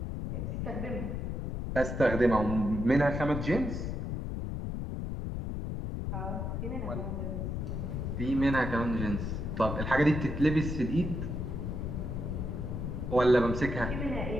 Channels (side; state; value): left; noise; rumble, 3 dB below the sound